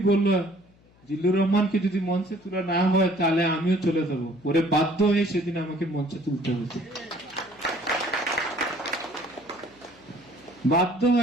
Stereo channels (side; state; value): left; noise; hum, 30 dB below the sound